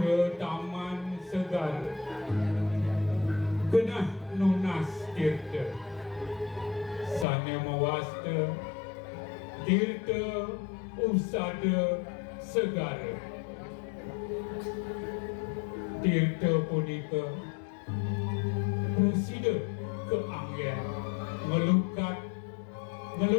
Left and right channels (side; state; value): right; drops out; at 7.2 s